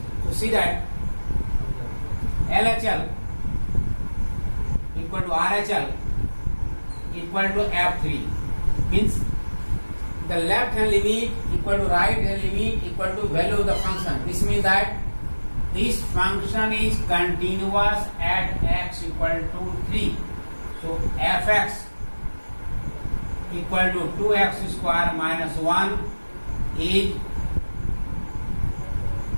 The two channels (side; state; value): both; inverted; correlation -1.00